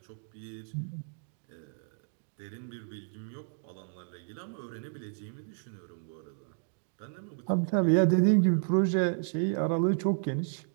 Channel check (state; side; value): silent; left; digital silence